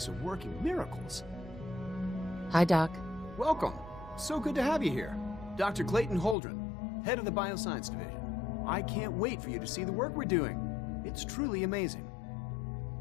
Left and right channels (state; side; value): drops out; right; at 6.4 s